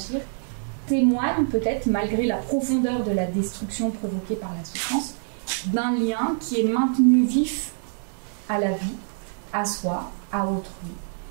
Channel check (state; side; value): silent; left; digital silence